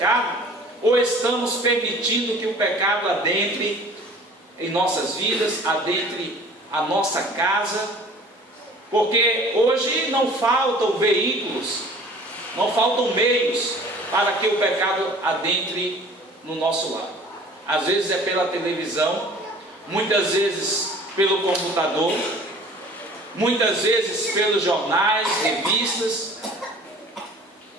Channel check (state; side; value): normal; both; correlation 0.48